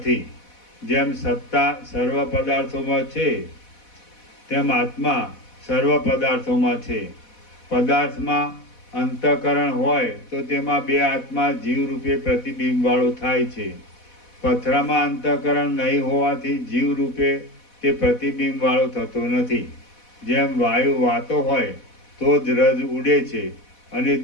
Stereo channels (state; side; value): late; right; 4.1 ms